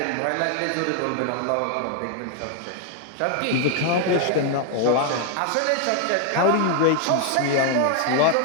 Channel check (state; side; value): different; both; correlation 0.00